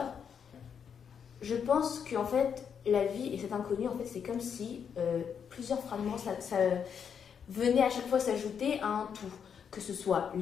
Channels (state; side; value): quieter; right; 7.3 dB